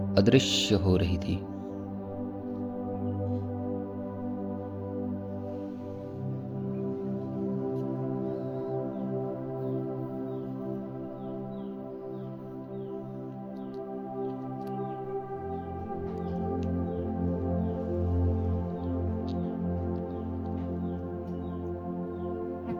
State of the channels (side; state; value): both; identical; correlation 1.00